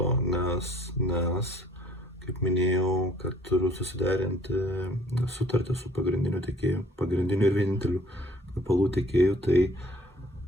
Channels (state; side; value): normal; both; correlation 0.57